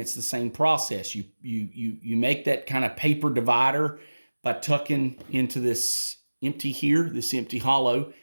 the same process. You make that kind of paper divider by tucking into this empty here, this empty hollow,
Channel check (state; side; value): inverted; both; correlation -1.00